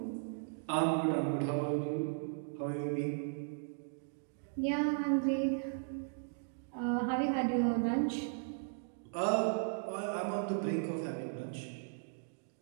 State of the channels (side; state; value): left; silent; digital silence